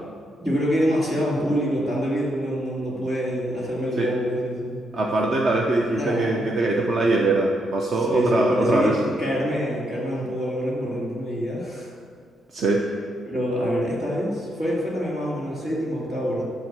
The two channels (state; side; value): normal; both; correlation 0.79